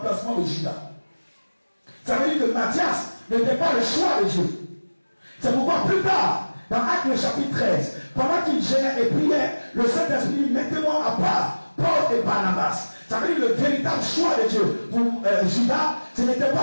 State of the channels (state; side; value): inverted; both; correlation -1.00